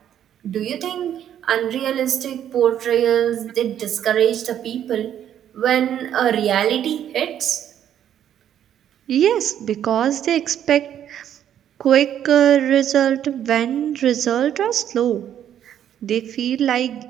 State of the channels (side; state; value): left; quieter; 10.2 dB